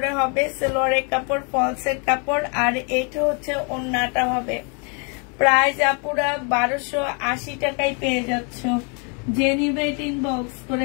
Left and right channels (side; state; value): right; quieter; 36.5 dB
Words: হবে, সালোয়ারের কাপড়, ফলসের কাপড়, আর এইটা হচ্ছে ওড়নাটা হবে। প্রাইস আপুরা 1280 টাকায় পেয়ে যাচ্ছ। যে নিবে এটা ইনবক্স